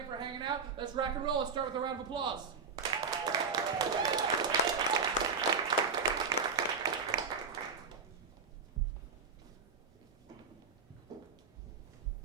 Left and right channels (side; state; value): left; quieter; 5.1 dB